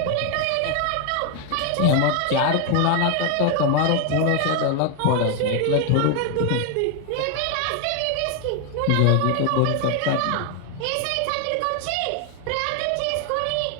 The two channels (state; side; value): different; both; correlation 0.01